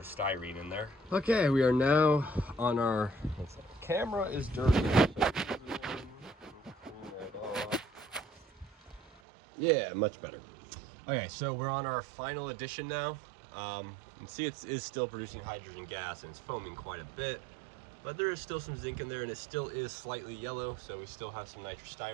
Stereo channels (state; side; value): drops out; left; at 9.2 s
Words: in there. Okay, we are now on our, camera is dirty. Yeah, much better. Okay, so we're on our final addition now. And see, it is still producing hydrogen gas, and it's foaming quite a bit. But there is still some zinc in there, and it still is slightly yellow, so we still have some